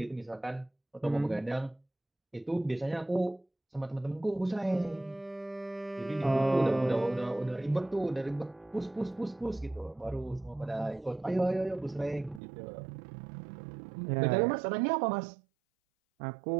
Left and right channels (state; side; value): drops out; left; at 12.4 s